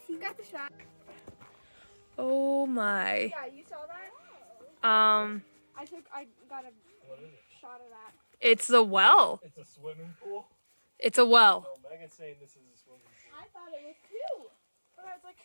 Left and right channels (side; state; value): both; inverted; correlation -1.00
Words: see? You got the shot. Oh my. Yeah, you saw that? I got a What is it? shot of that. It's the well. It's a swimming pool? It's a well. No, Megan's saying this is a swimming pool. I thought it was too. But I was like,